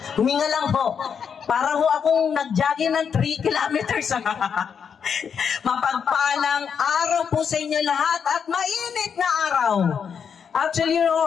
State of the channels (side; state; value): right; quieter; 7.0 dB